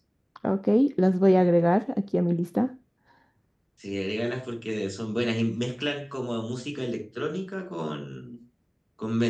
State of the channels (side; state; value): both; identical; correlation 1.00